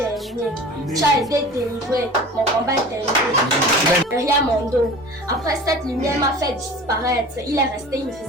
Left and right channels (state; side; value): normal; both; correlation 0.39